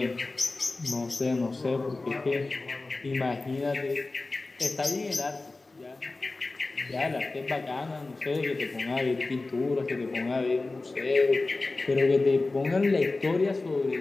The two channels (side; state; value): right; quieter; 3.4 dB